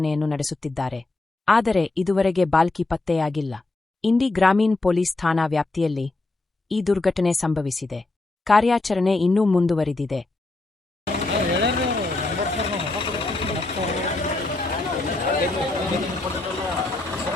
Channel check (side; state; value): right; quieter; 3.1 dB